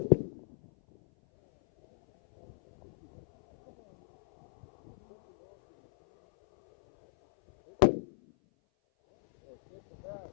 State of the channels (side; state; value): right; silent; 55 dB below the other